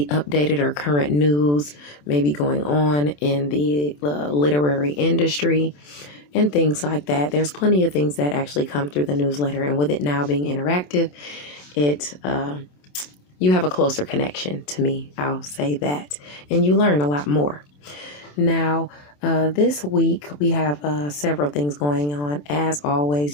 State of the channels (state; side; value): late; right; 27 ms